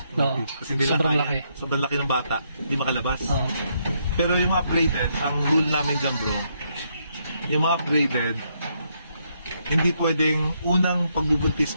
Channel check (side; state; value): both; inverted; correlation -0.76